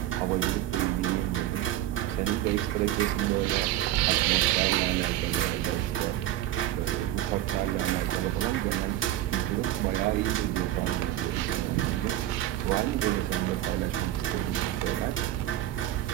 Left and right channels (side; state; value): left; quieter; 13.5 dB